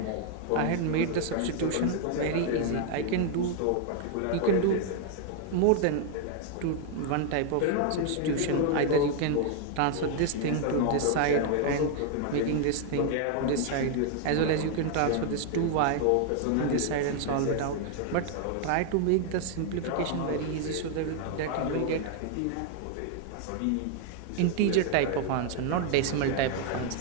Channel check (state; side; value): different; both; correlation 0.00